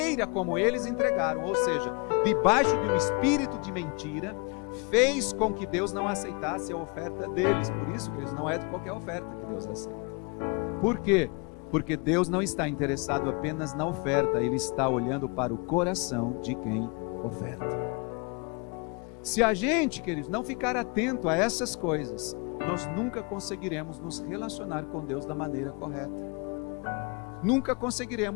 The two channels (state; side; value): quieter; right; 31.8 dB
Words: como eles entregaram, ou seja, debaixo de um espírito de mentira, fez com que Deus não aceitasse a oferta deles. Por isso que eles não é de qualquer oferta que Deus aceita. Por quê? Porque Deus não está interessado apenas na oferta, Ele está olhando para o coração de quem oferta. Se a gente, queridos, não ficar atento a essas coisas, nós nunca conseguiremos nos relacionar com Deus da maneira correta. Nunca